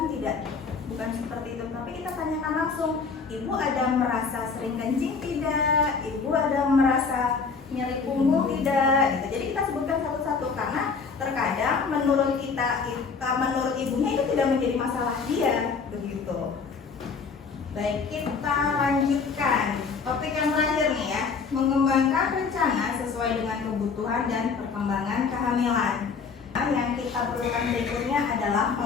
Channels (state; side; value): quieter; right; 5.2 dB